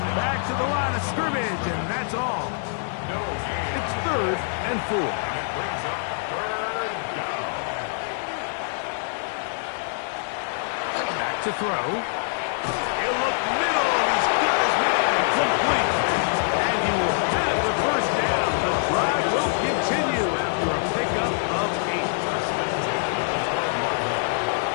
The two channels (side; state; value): right; silent; digital silence